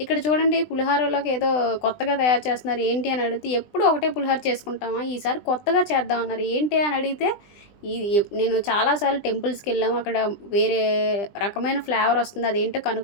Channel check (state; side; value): late; right; 20 ms